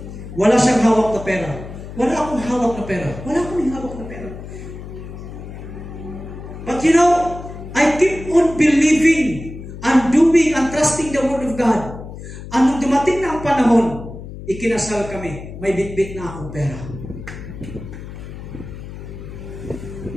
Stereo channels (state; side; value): noise; left; hum, 12 dB below the sound